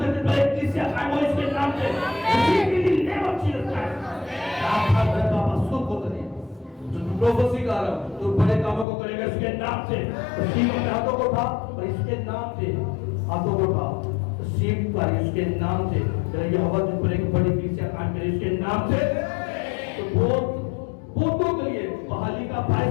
तुझ पर एक कलीसिया कायम होगी उसके नाम से। नेवर चीज आप हर बाबा सुख होता है प्रोफेसी कर रहा हूं, तो बड़े कामों को करेगा इसके नाम से। सीख में हाथों को उठा और इसके नाम से हाथों को उठा, सीख कर इसके नाम से ये हवा तुझ पर एक बड़ी कलीसिया कायम करे इसके नाम से। तो बहुतों के लिए बहाली का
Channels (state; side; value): drops out; right; at 8.8 s